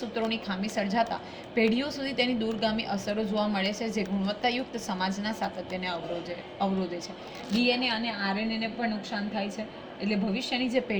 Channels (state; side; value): identical; both; correlation 1.00